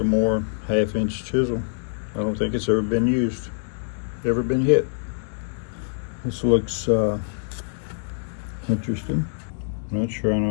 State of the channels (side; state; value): right; silent; digital silence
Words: 1/2-inch chisel. I don't think it's ever been used, ever been hit. This looks interesting. I'm not sure I